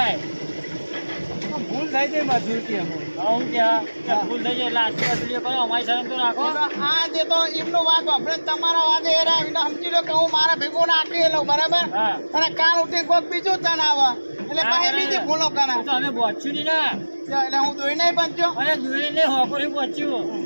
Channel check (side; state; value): both; inverted; correlation -1.00